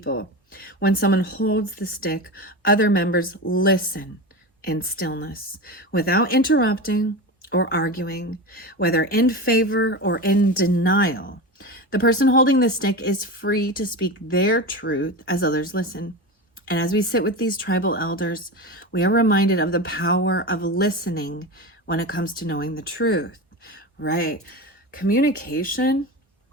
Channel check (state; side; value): normal; both; correlation 0.24